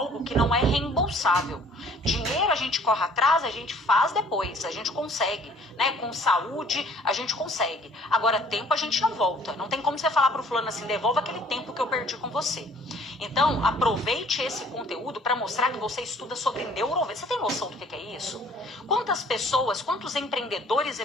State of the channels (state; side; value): normal; both; correlation 0.56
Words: que não é reembolsável. Dinheiro a gente corre atrás, a gente faz depois, a gente consegue, né? Com saúde, a gente consegue. Agora, tempo a gente não volta. Não tem como você falar para o fulano assim, devolva aquele tempo que eu perdi com você. Então, aproveite esse conteúdo para mostrar que você estuda sobre neurovendas. Você tem noção do que é isso? Quantas pessoas, quantos empreendedores e